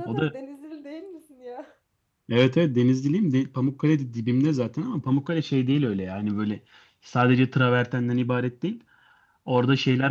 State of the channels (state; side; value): identical; both; correlation 1.00